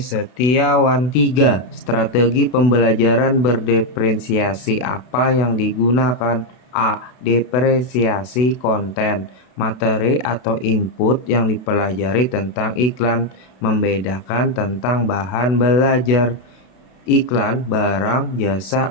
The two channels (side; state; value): right; late; 32 ms